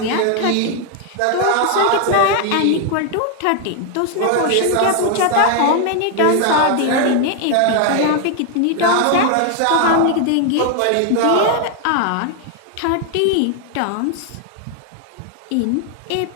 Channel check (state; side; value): different; both; correlation 0.00